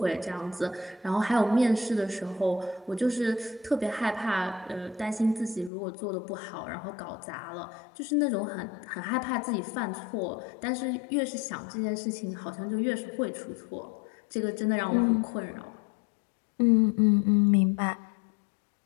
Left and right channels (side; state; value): right; drops out; at 5.7 s